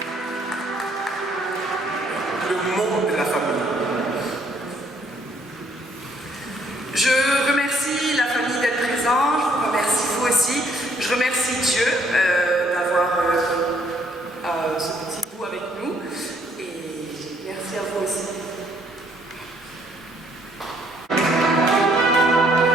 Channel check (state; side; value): normal; both; correlation 0.66